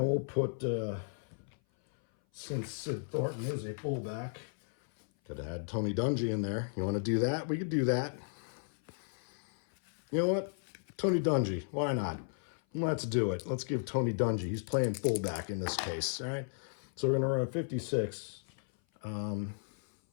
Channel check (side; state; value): right; silent; 55 dB below the other